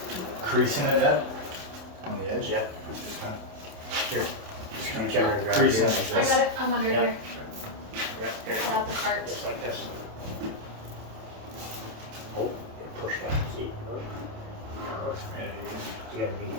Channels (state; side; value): late; left; 27 ms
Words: creasing it, Ed, on the edge. Yeah. Just kind of Here. just kind Reach over and of grab creasing here. it I like got this. it. I'm under Yeah. here. Yeah, here. I have the cart. Just like this. Oh, and push that. See? You gotta be